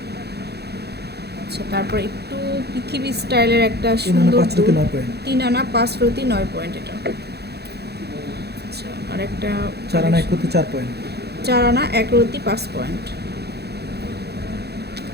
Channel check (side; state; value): left; late; 0.48 ms